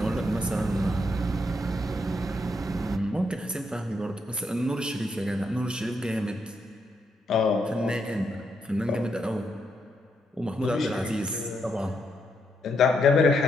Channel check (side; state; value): both; normal; correlation 0.79